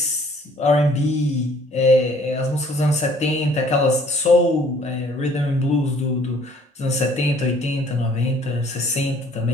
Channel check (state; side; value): normal; both; correlation 0.58